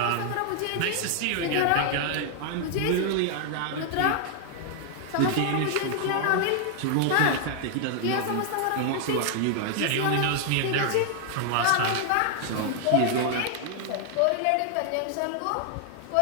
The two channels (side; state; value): both; different; correlation 0.00